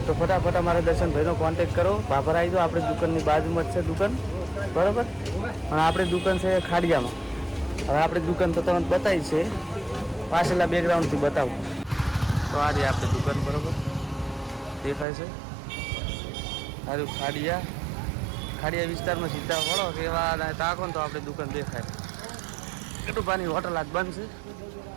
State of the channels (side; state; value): left; drops out; at 15.1 s